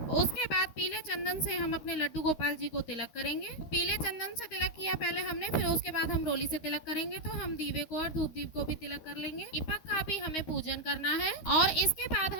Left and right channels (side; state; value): right; late; 13 ms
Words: उसके बाद पीले चंदन से हम अपने लड्डू गोपाल जी को तिलक करेंगे। पीले चंदन से तिलक किया पहले हमने, फिर उसके बाद हम रोली से तिलक करेंगे। तो हम दीवे को और धूप दीप को भी तिलक कर लेंगे। दीपक का भी हमें पूजन करना है और इसके बाद